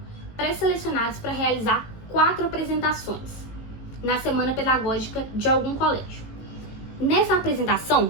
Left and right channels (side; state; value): right; late; 18 ms